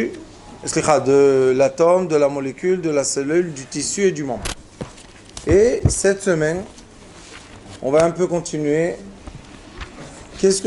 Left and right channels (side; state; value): both; identical; correlation 1.00